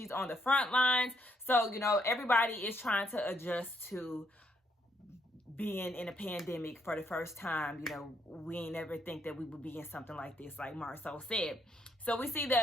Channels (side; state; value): both; normal; correlation 0.74